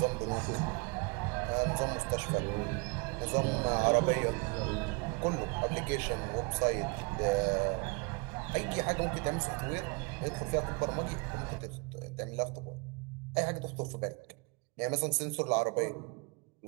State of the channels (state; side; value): quieter; left; 30.4 dB